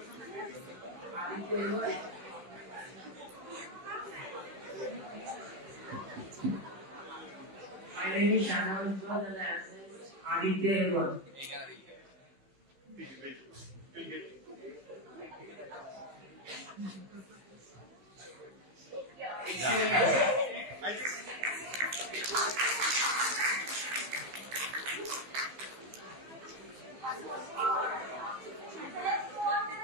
My name is Shannon and the answer is Aditya Elwan.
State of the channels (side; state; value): left; late; 15 ms